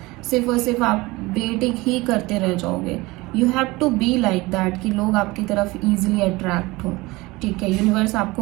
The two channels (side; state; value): left; quieter; 21.7 dB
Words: सिर्फ और सिर्फ आप वेटिंग ही करते रह जाओगे. You have to be like that कि लोग आपकी तरफ ईजिली अट्रैक्ट हो. ठीक है, यूनिवर्स आपको